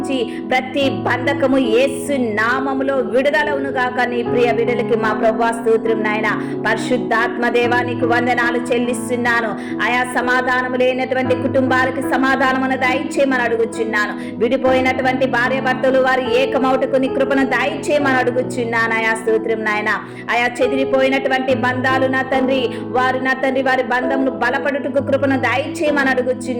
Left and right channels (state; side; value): identical; both; correlation 1.00